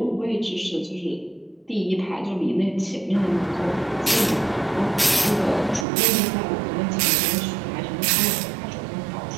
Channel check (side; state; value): left; drops out; at 5.9 s